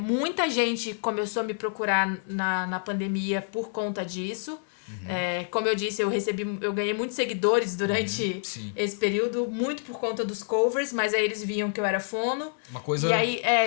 gente começou a me procurar na pandemia por conta disso. Como eu disse, eu ganhei muitos seguidores durante esse período, muito por conta dos covers, mas aí eles viam que eu era fono. Uma coisa e aí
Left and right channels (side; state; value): right; silent; 60 dB below the other